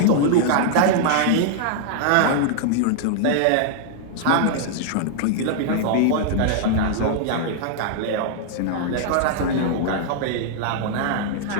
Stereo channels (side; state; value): both; different; correlation -0.01